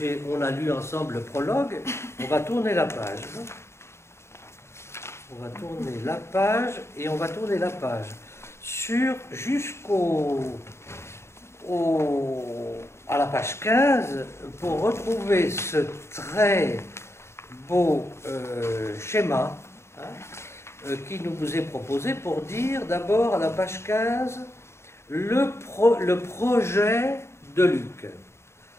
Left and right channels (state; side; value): late; right; 0.13 ms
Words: on a lu ensemble le prologue. On va tourner la page. On va tourner la page et on va tourner la page à la page 15 pour retrouver ce très beau schéma qui nous est proposé pour dire d'abord à la page 15 le projet de Luc